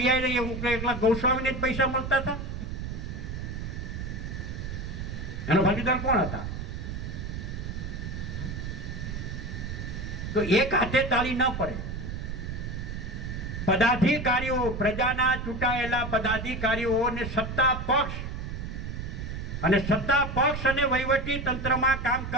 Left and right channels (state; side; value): noise; right; rumble, 5 dB below the sound